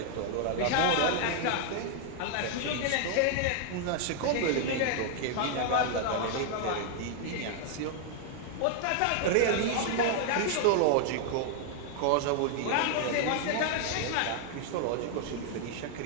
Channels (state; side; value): different; both; correlation 0.00